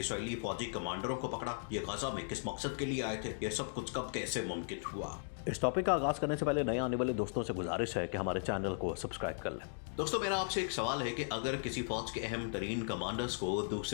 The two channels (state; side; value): silent; right; digital silence